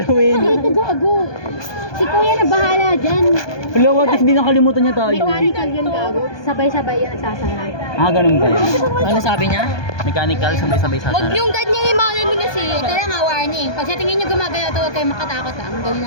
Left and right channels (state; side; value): late; right; 1.2 ms